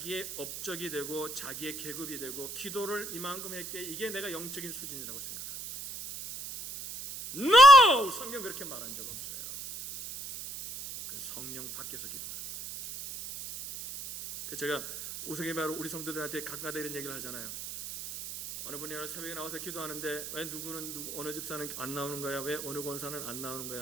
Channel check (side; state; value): right; noise; hiss, 9 dB below the sound